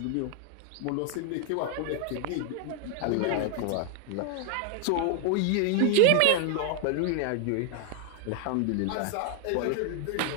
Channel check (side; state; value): both; different; correlation 0.00